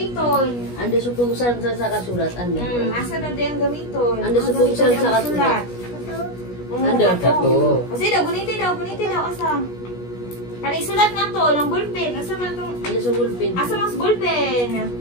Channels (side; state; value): right; late; 17 ms